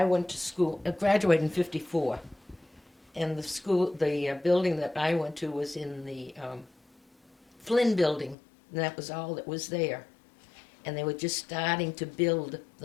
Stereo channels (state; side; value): drops out; right; at 8.3 s